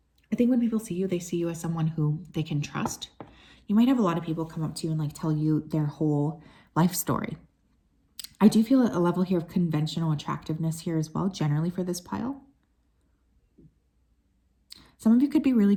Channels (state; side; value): identical; both; correlation 1.00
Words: I think when people see you, they see you as someone who they can trust. You might have a lot of people come up to you and like tell you their whole life story. I do feel a level here of conventional attractiveness here as well, generally for this pile. Some of you could be really